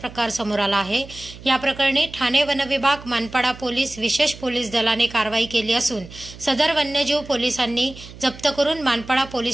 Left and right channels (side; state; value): right; noise; hum, 17 dB below the sound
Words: प्रकार समोर आला आहे। या प्रकरणी ठाणे वनविभाग, मानपाडा पोलीस, विशेष पोलीस दलाने कारवाई केली असून सदर वन्यजीव पोलिसांनी जप्त करून मानपाडा